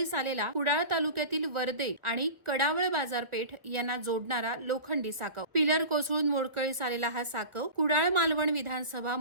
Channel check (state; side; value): late; left; 1.5 ms